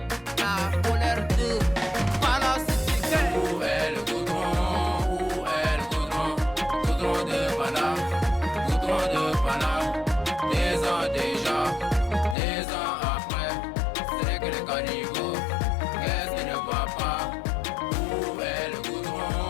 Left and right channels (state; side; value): drops out; right; at 12.4 s